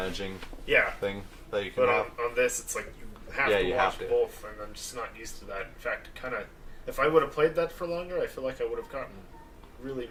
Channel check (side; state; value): both; identical; correlation 1.00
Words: Yeah, thing that you can but have. on this, it's like you have Yeah, to you watch have to. both, and I'm just not used to that. In fact, if I would have played that for longer, I feel like I would have gotten really